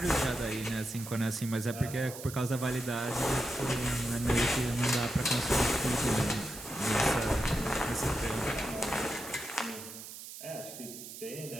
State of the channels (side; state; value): right; noise; hiss, 12 dB below the sound